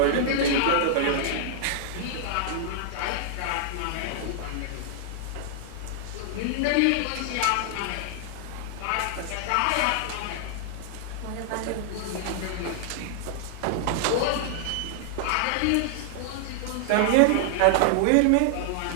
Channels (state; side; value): different; both; correlation -0.01